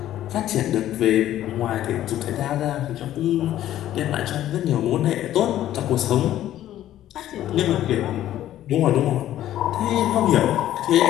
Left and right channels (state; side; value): quieter; right; 12.8 dB